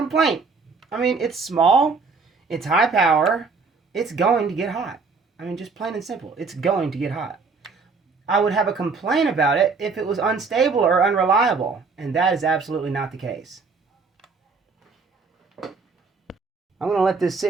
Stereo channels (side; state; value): left; quieter; 4.6 dB